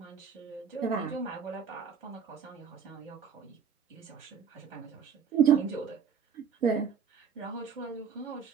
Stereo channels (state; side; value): quieter; left; 6.9 dB